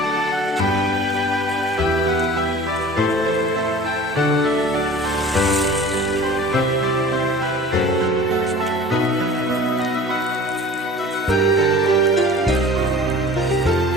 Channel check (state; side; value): normal; both; correlation 0.43